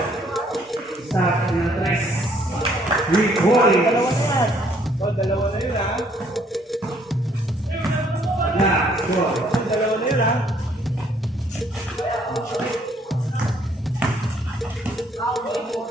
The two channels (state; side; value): normal; both; correlation 0.65